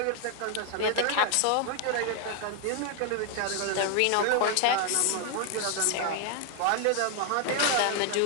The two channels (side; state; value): both; different; correlation 0.00